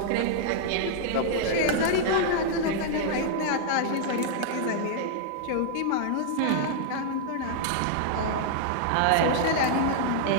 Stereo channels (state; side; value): different; both; correlation -0.01